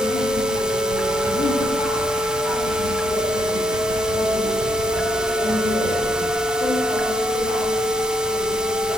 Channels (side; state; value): both; normal; correlation 0.72